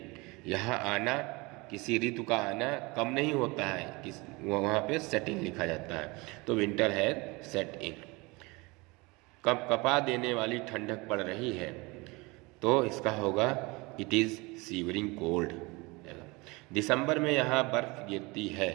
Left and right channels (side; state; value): left; quieter; 25.0 dB